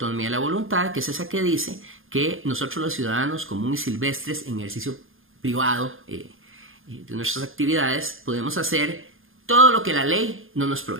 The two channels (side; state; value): left; late; 0.60 ms